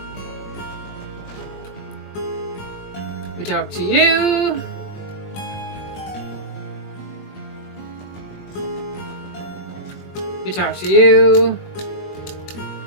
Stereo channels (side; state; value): right; late; 21 ms